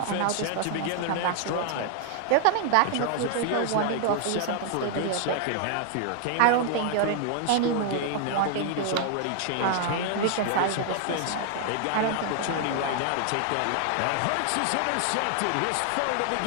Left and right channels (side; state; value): both; different; correlation 0.00